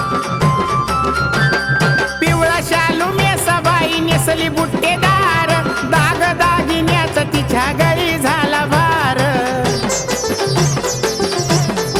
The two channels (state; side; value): identical; both; correlation 1.00